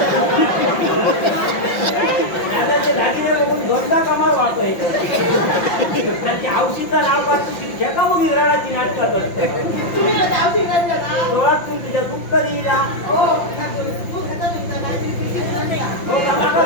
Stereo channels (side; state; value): right; late; 5.7 ms